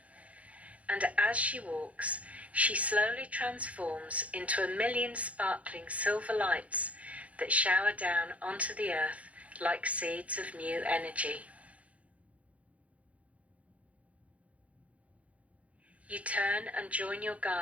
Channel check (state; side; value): late; left; 0.066 ms